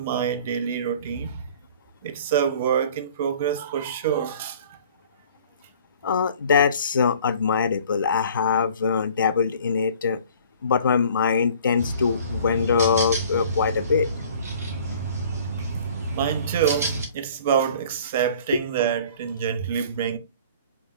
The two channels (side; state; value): both; inverted; correlation -0.50